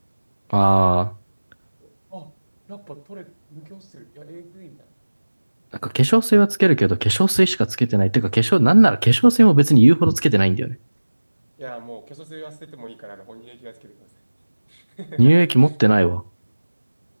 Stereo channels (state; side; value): inverted; both; correlation -1.00